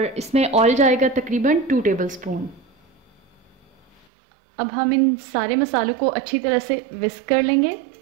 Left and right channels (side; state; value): left; drops out; at 4.0 s